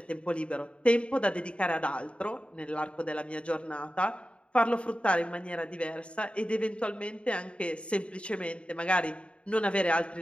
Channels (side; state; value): right; late; 0.058 ms